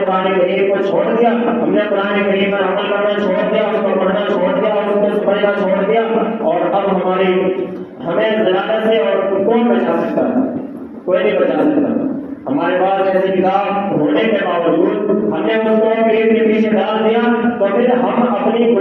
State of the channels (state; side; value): identical; both; correlation 1.00